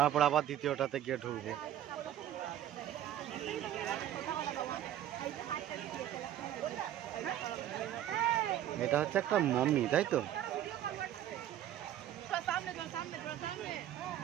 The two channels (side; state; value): left; quieter; 11.7 dB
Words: আবার দ্বিতীয়টাতে গিয়ে ঢুকবো। এটা হচ্ছে একটা মমি, তাই তো?